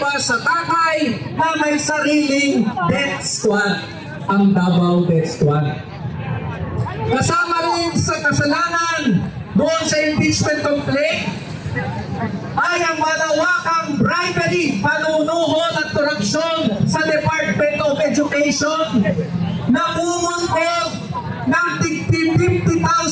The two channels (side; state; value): both; identical; correlation 1.00